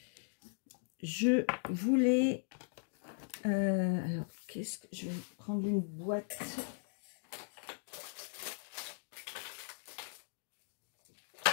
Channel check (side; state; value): right; silent; digital silence